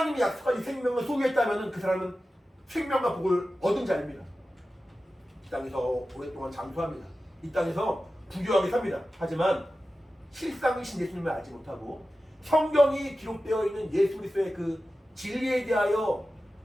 약속한 이 생명을 소유했다면 그 사람은 생명과 복을 얻은 자입니다. 이 땅에서 오랫동안 장수합니다. 이 땅에서 부유하게 삽니다. 하지만 실상이신 예수님을 알지 못하고 성경이 기록되어 있는 예수 그리스도의 그 진리에 대하여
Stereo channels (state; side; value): normal; both; correlation 0.94